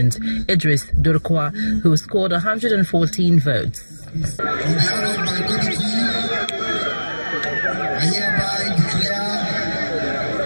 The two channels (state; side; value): inverted; both; correlation -1.00